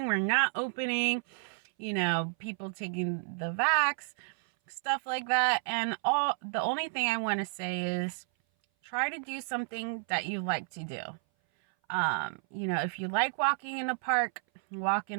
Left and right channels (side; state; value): left; silent; 57 dB below the other